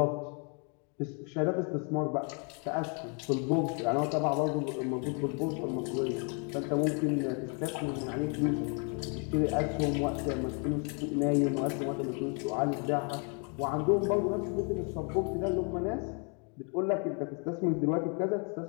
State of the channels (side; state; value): right; quieter; 37.5 dB